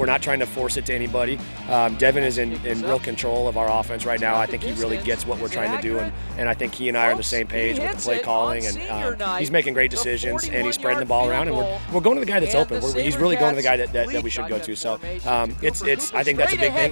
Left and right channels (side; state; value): both; inverted; correlation -1.00